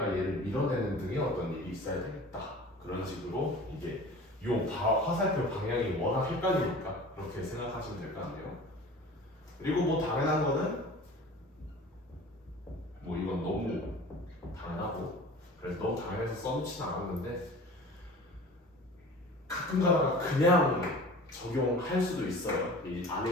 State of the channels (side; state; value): both; normal; correlation 0.41